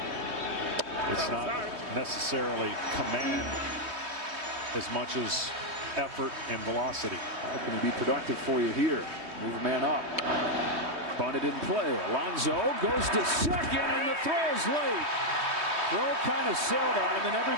It's not necessarily command as much as effort and velocity. How can he be productive for you here? Move a man up. Bunted in play. Alonso goes to second, and the throw's late. Throw kind of sailed on him, and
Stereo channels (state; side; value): late; left; 3.2 ms